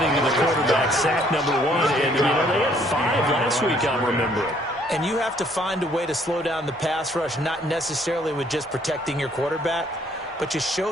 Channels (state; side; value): normal; both; correlation 0.64